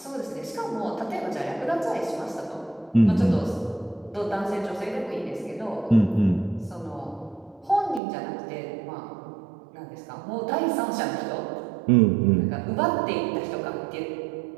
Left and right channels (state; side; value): drops out; left; at 8.0 s